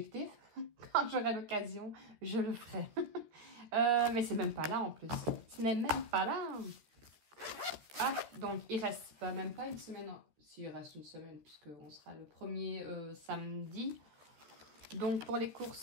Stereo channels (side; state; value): left; late; 14 ms